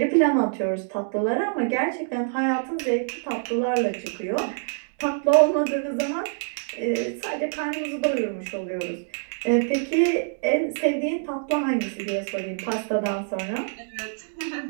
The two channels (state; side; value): silent; left; digital silence